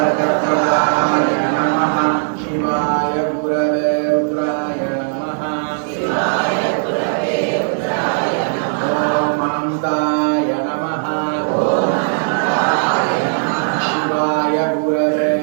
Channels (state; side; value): silent; left; 68 dB below the other